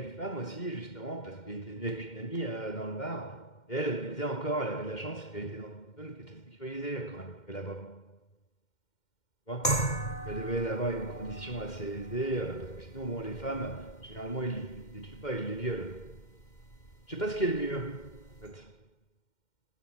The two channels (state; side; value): late; right; 2.1 ms